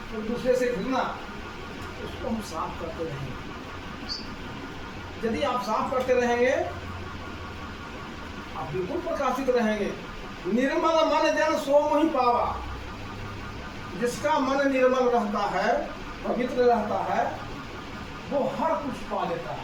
एक दूसरे से घृणा। उसको हम साफ करते रहेंगे। यदि आप साफ करते रहेंगे, आप बिल्कुल प्रकाशित रहेंगे। निर्मल मन जन सो मोहि पावा। जिसका मन निर्मल रहता है, पवित्र रहता है, वो हर कुछ पा लेता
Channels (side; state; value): both; identical; correlation 1.00